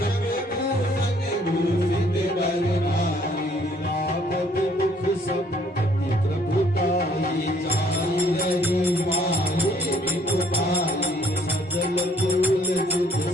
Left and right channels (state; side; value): normal; both; correlation 0.63